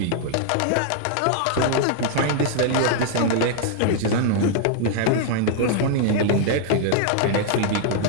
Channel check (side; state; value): both; different; correlation 0.00